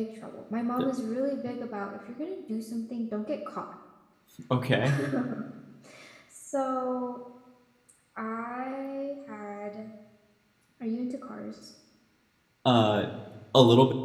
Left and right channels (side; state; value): both; identical; correlation 1.00